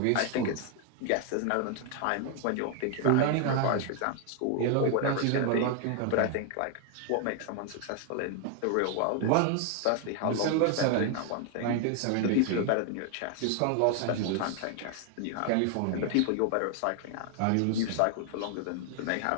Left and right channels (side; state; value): both; different; correlation 0.00